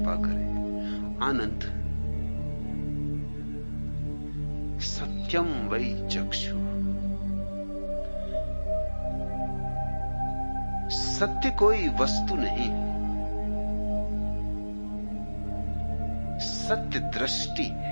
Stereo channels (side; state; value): both; inverted; correlation -1.00